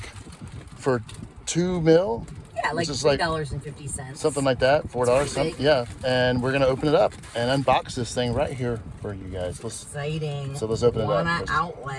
for $2 million. Yeah, like $3.50. Something like that, $4. Big. Yeah, and we're gonna open it up and unbox this thing right here for you guys. Exciting. So let's open it up. Wana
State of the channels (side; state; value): both; identical; correlation 1.00